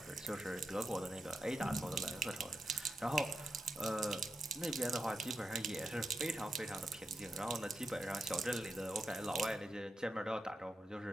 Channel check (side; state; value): both; normal; correlation 0.87